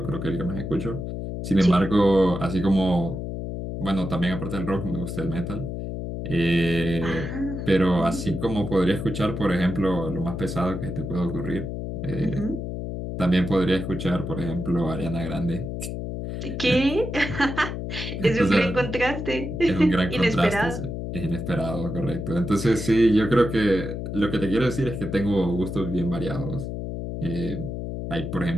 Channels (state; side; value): noise; left; hum, 5 dB below the sound